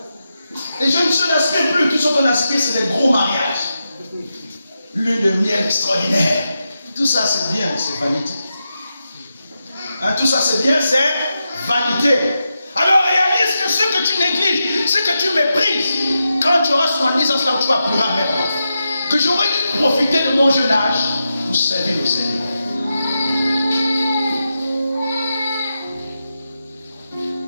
Les jeunes sœurs n'aspirent plus. Tout ce qu'on aspire, c'est des gros mariages. Lune de miel extraordinaire. Tout ça, c'est bien, c'est vanité. Hein, tout ça, c'est bien, c'est vanité. Alors réalise que ce que tu négliges, ce que tu méprises, quand tu auras 70 ans, là où tu vas pleurer amèrement. Que j'aurais dû profiter de mon jeune âge pour servir au Seigneur.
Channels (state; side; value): inverted; both; correlation -0.88